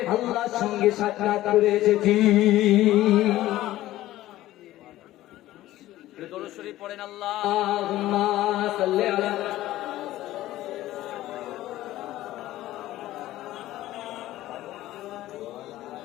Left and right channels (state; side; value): quieter; right; 15.3 dB